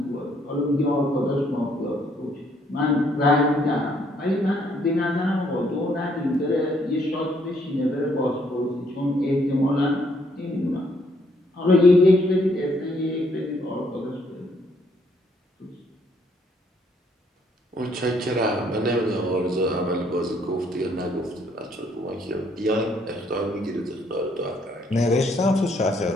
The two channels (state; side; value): normal; both; correlation 0.68